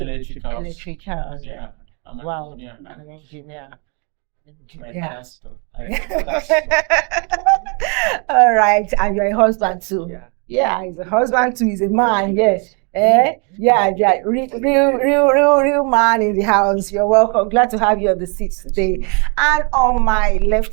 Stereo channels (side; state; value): left; quieter; 35.2 dB